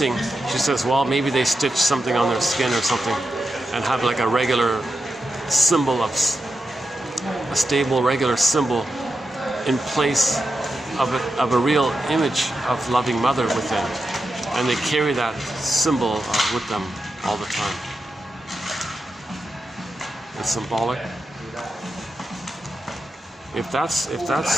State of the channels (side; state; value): both; normal; correlation 0.88